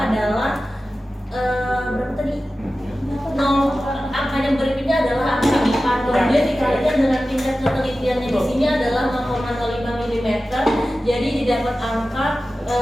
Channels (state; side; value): normal; both; correlation 0.95